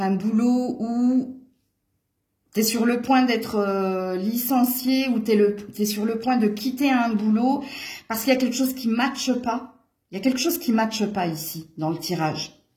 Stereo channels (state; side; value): identical; both; correlation 1.00